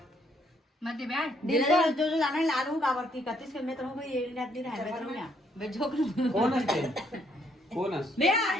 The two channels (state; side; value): normal; both; correlation 0.70